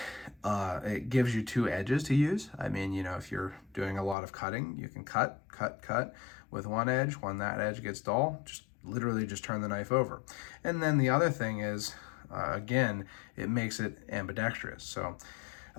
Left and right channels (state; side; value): drops out; right; at 4.2 s